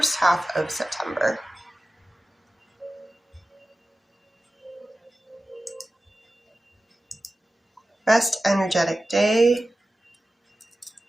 half of September. Best energetic day,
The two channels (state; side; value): normal; both; correlation 0.95